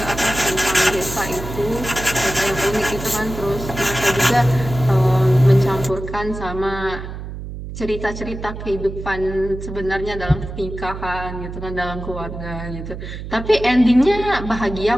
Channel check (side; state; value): right; noise; hum, 9 dB below the sound